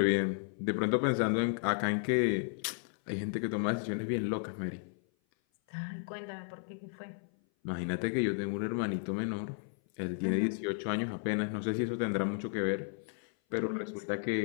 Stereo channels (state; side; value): silent; right; 55 dB below the other